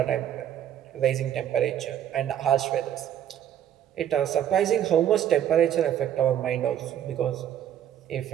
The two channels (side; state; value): left; quieter; 10.5 dB